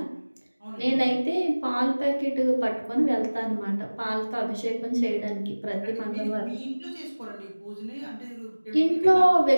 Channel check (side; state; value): both; inverted; correlation -1.00